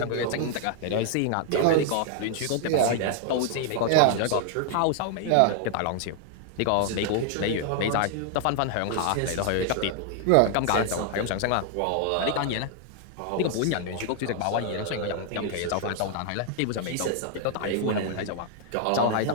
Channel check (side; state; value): both; different; correlation 0.00